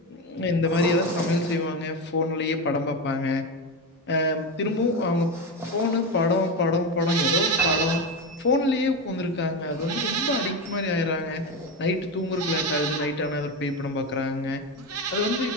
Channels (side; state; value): both; normal; correlation 0.17